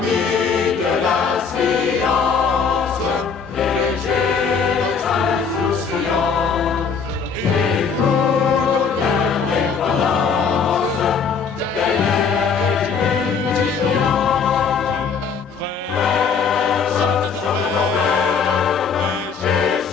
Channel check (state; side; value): quieter; right; 5.8 dB